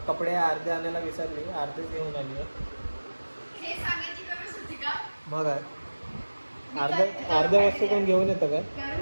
कपडे अर्धे आणायला विसरली, अर्धेच घेऊन आली आहे. मग अर्ध्या वस्तू कोण घेऊन येतं काय?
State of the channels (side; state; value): both; inverted; correlation -1.00